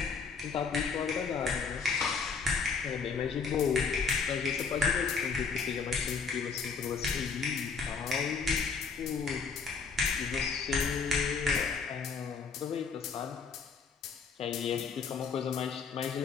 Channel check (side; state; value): right; quieter; 5.3 dB